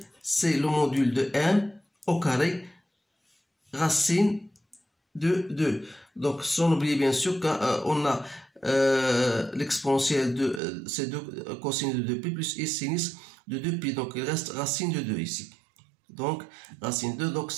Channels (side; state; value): left; drops out; at 10.6 s